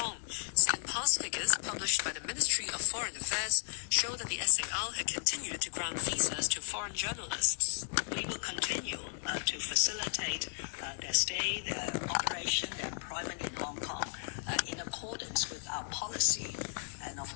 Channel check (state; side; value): silent; right; 55 dB below the other